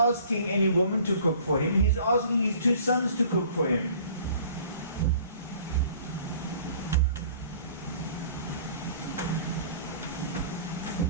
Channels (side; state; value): both; inverted; correlation -0.51